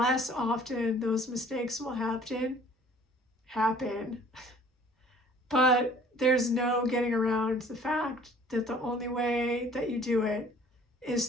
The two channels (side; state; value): both; normal; correlation 0.53